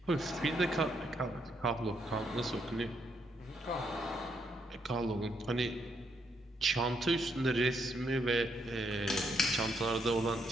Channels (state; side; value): normal; both; correlation 0.75